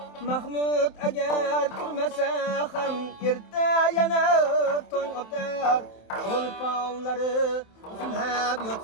Mahmud agar turmasa ham erta yana tong otar. Cho'lponlari uxlab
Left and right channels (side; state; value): right; late; 27 ms